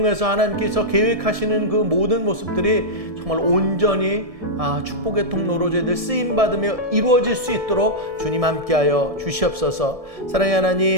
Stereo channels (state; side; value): late; left; 1.7 ms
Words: 하나님께서 계획하시는 그 모든 모습들이 정말 온전히 축복의 통로로 저희들 쓰임받으며 이루어질 수 있도록 주님 함께하여 주시옵소서. 사랑의